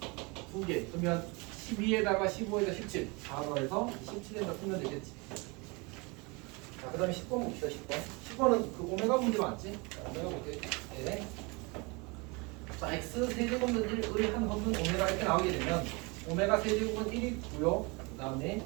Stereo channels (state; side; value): quieter; left; 28.0 dB